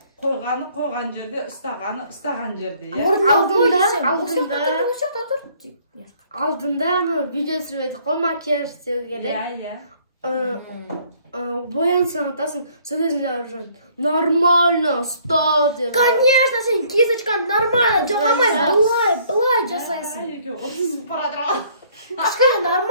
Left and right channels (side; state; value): both; inverted; correlation -0.61